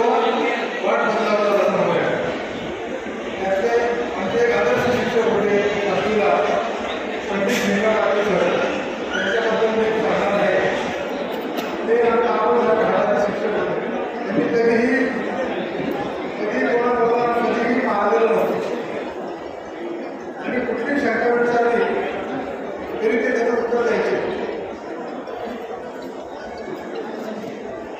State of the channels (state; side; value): identical; both; correlation 1.00